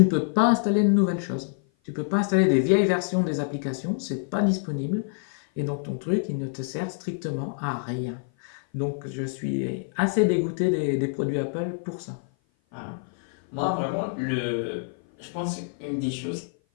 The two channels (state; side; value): silent; right; 56 dB below the other